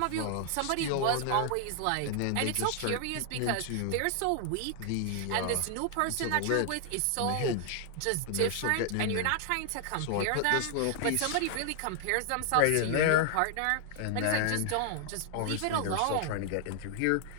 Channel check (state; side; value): different; both; correlation 0.00